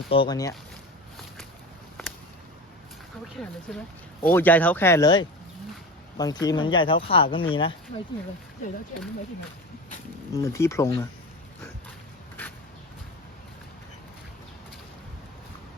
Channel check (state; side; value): normal; both; correlation 0.30